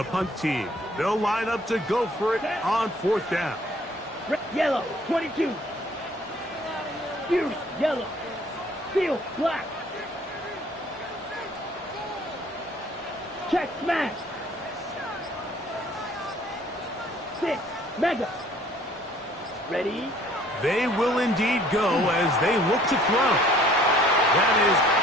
punt team. They'll line up to go for it on 4th down. Yellow, 22. Fury, yellow. Field, black. Check, smash. 6, mega. Ready? They will indeed go as they look to throw. That is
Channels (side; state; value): both; normal; correlation 0.57